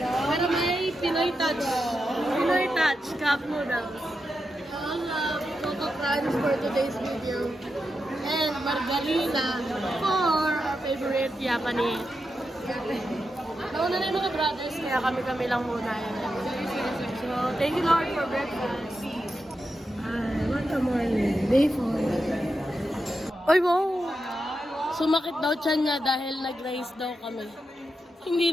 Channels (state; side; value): normal; both; correlation 0.87